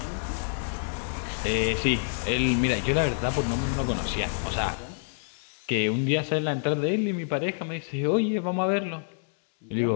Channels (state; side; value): silent; right; 60 dB below the other